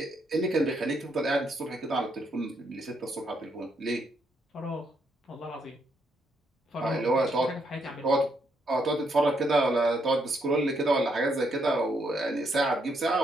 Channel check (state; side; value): normal; both; correlation 0.75